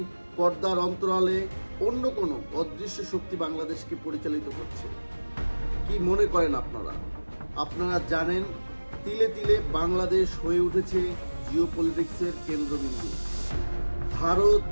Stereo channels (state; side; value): inverted; both; correlation -1.00